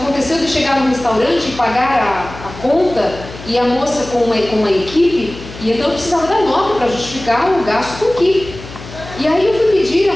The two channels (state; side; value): noise; left; hum, 15 dB below the sound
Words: de chegar no restaurante e pagar a conta e a moça com uma equipe, e então eu precisava da nota para justificar o gasto com equipe. E aí eu fui pedir a